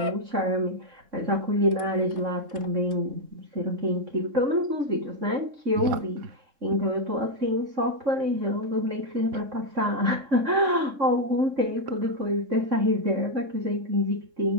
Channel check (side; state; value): left; late; 3.7 ms